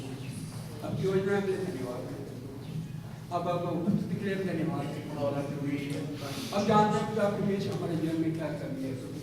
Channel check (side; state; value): both; identical; correlation 1.00